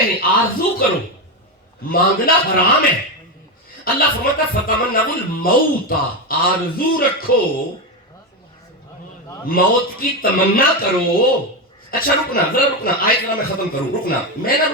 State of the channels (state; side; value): normal; both; correlation 0.12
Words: آرزو کرو. مانگنا حرام ہے. اللہ فرماتا فتمنوا الموت، آرزو رکھو، موت کی تمنا کرو. اچھا رکنا ذرا رکنا، آیت ذرا میں ختم کروں. رکنا، میں نہ